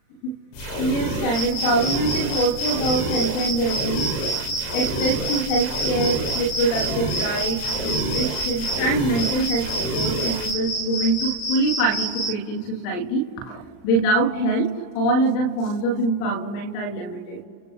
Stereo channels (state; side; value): late; right; 39 ms